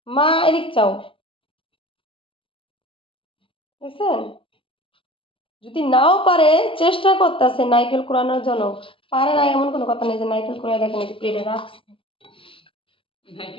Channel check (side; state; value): right; late; 0.25 ms